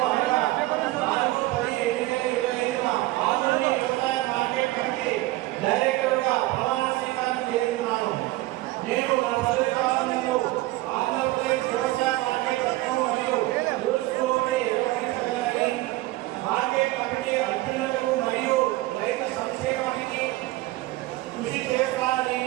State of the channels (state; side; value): quieter; left; 18.6 dB